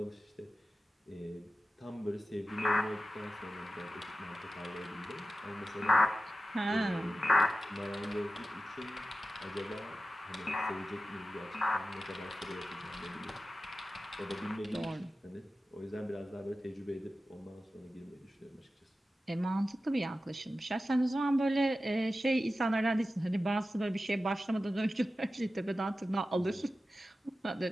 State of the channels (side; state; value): both; normal; correlation 0.94